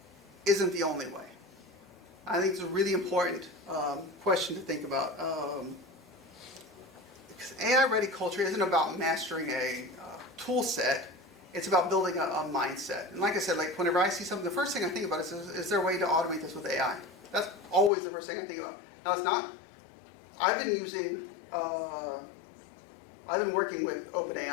isn't the only way? I think it's a really important question to think about. Because AI-ready culture isn't about mastering a tool set. It's about building a mindset. And like I said, like whenever I see something, the first thing I think about is there a way to automate this with AI? That's always the first thing I think about. Now, it's not. I've been working with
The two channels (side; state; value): right; drops out; at 17.9 s